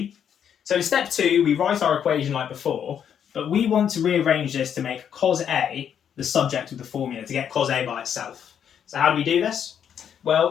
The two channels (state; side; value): quieter; right; 8.5 dB